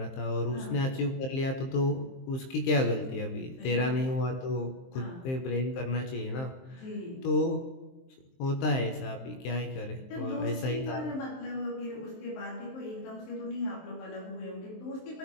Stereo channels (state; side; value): late; right; 23 ms